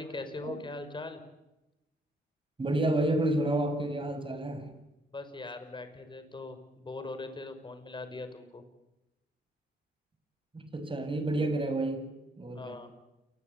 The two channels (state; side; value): normal; both; correlation 0.68